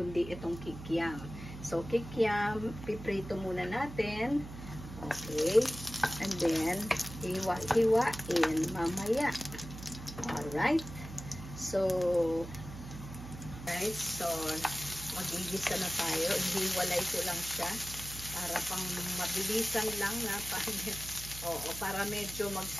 itong kikiam. So, kikiam, piprito muna natin. Okay, and then, hiwa-hiwain mamaya. Alright. So, guys, so, magigisa na tayo. Hiwalay ko lang siya para pang mabilisan lang na para medyo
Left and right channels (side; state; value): right; noise; hum, 12 dB below the sound